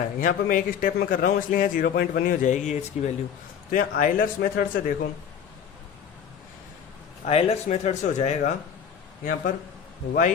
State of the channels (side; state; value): right; quieter; 7.9 dB